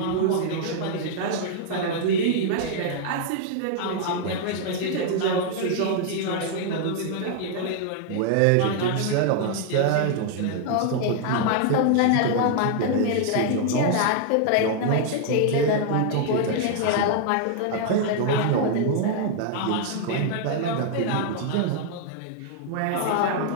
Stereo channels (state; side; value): different; both; correlation 0.00